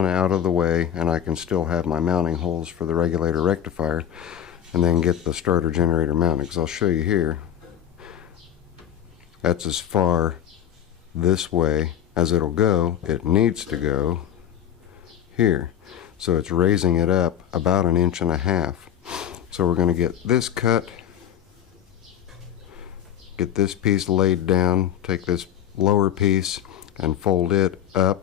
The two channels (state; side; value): quieter; right; 9.7 dB